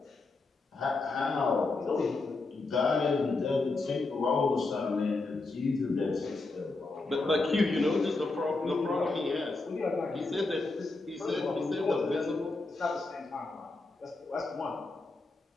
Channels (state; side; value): quieter; right; 3.5 dB